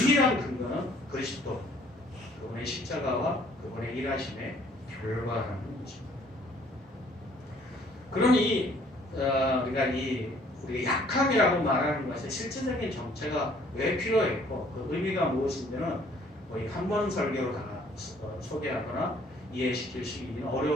근거는 그리스도, 그분의 십자가와 그분의 일하심의 결과라는 것입니다. 그러니 우리가 우리가 약함이라고 말하는 것의 실질적인 정체가 왜 필요했고 그 의미가 무엇인지는 거의 한 번 설교로 다 소개하거나 이해시킬 수 있는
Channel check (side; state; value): both; normal; correlation 0.60